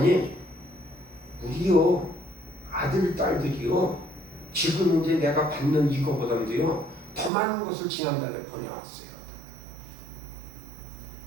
우리요 아들, 딸들이요 지금 이제 내가 받는 이거보다도요 더 많은 것을 지난달에 보내왔어요.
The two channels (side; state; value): left; drops out; at 7.3 s